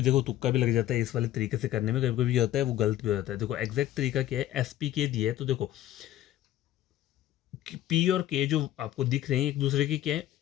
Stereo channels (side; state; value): right; quieter; 13.2 dB